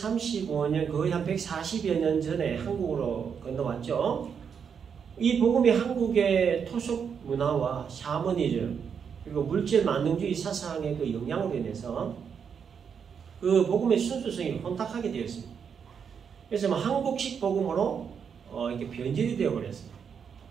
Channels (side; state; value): left; quieter; 6.9 dB